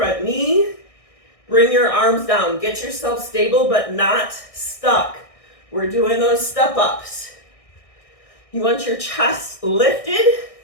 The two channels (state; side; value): late; right; 1.6 ms